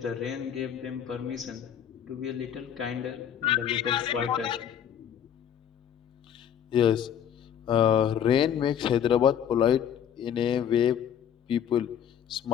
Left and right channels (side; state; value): right; quieter; 9.1 dB